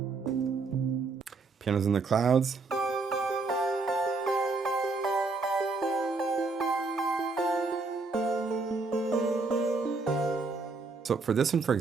Pianos in the Clouds. So for this one, for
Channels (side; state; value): left; quieter; 3.9 dB